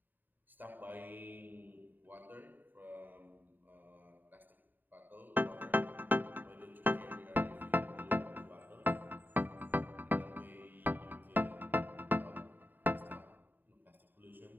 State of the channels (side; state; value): left; late; 0.090 ms